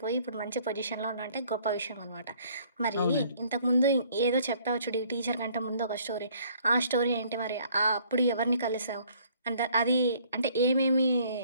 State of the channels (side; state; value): both; inverted; correlation -0.60